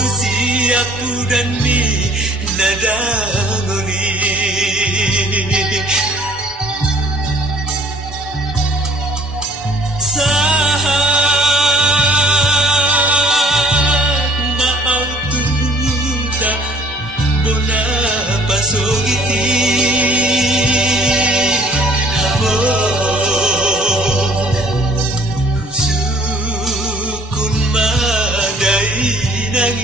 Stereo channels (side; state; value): both; normal; correlation 0.55